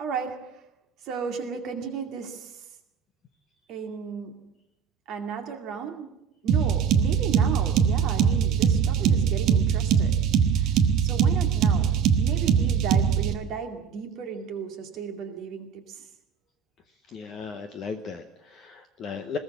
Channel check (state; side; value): quieter; left; 6.9 dB